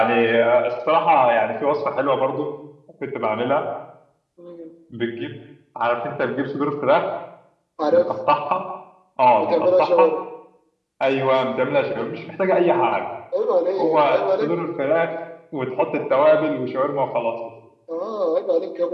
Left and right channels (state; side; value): identical; both; correlation 1.00